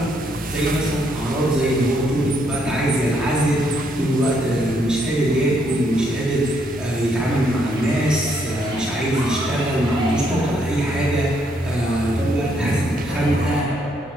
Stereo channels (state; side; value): normal; both; correlation 0.73